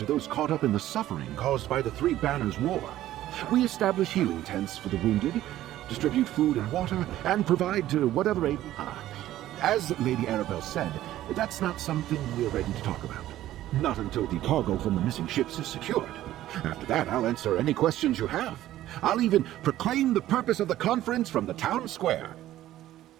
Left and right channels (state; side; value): quieter; left; 13.8 dB